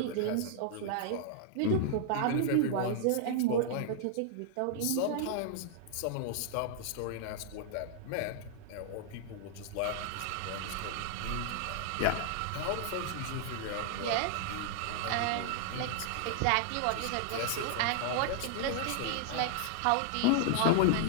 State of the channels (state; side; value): different; both; correlation 0.00